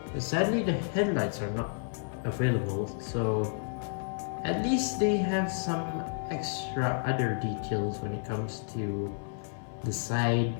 But sadly, the headlights are not available, so at least they have some extra other details when it comes to the side,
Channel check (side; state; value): right; silent; 57 dB below the other